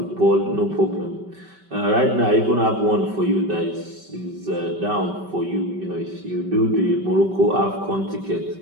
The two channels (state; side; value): late; left; 5.2 ms